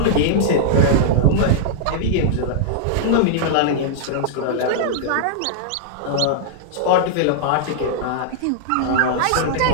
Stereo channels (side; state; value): both; different; correlation -0.02